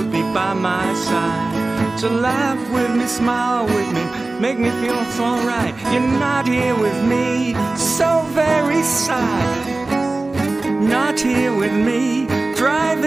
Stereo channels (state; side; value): quieter; left; 3.2 dB